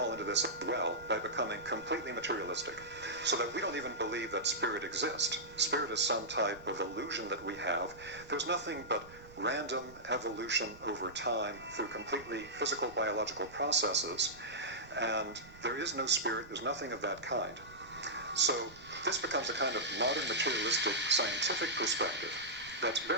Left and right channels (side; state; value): right; noise; rumble, 21 dB below the sound